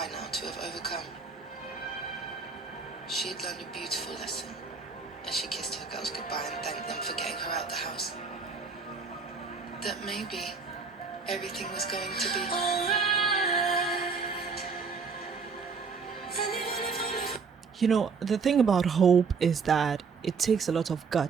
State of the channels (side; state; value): left; quieter; 5.1 dB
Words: now to have overcome, she had learned a beautiful lesson as she kissed her girls goodbye and thanked them for getting her out the house. That maybe everything was going to be alright. You know, the thing about hope is that it takes a lot of